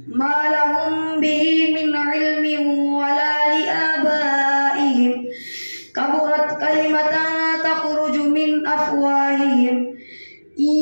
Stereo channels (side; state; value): both; inverted; correlation -1.00